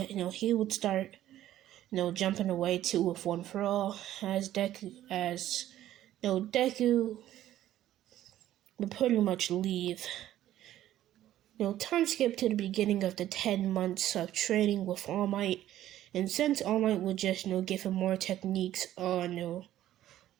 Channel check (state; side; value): quieter; left; 12.9 dB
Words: he would start jumping away too with One for All, as Deku would pretty much leave. Time skip to the beginning of the 10 months of training with All Might, and since All Might would just give him more techniques on